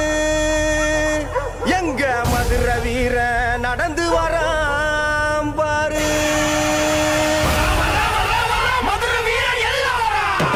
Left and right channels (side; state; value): both; identical; correlation 1.00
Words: எங்க மதுரை வீர நடந்து வராம் பாரு